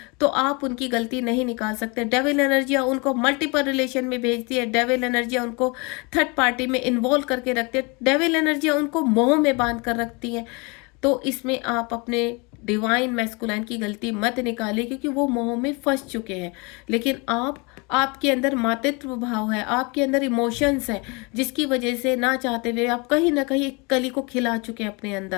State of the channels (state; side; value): quieter; right; 29.3 dB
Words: तो आप उनकी गलती नहीं निकाल सकते। डेविल एनर्जियाँ उनको मल्टीपल रिलेशन में भेजती है, डेविल एनर्जियाँ उनको थर्ड पार्टी में इन्वॉल्व करके रखती है, डेविल एनर्जियाँ उनको मोह में बांध कर रखती हैं। तो इसमें आप अपने डिवाइन मैस्कुलाइन की गलती मत निकालिए, क्योंकि वो मोह में फंस चुके हैं। लेकिन आपके अंदर मातृत्व भाव है, आपके अंदर इमोशंस है, जिसकी वजह से ना चाहते हुए आप कहीं ना कहीं एक कली को खिला चुके हैं अपने